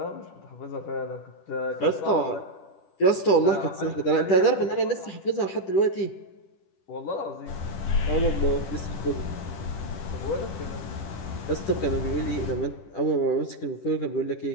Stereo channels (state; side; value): late; right; 10 ms